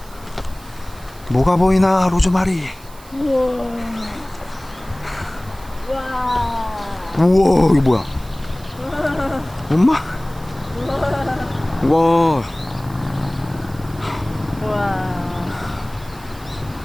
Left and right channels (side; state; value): right; noise; hiss, 22 dB below the sound